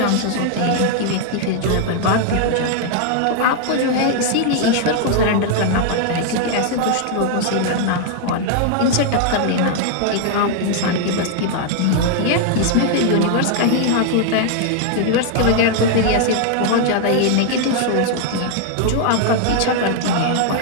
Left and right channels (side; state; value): both; different; correlation 0.00